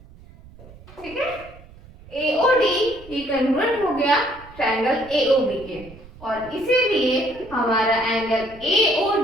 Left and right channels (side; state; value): right; noise; rumble, 21 dB below the sound